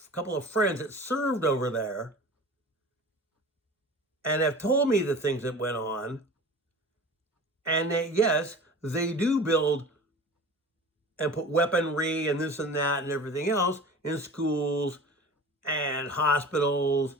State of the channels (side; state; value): both; normal; correlation 0.38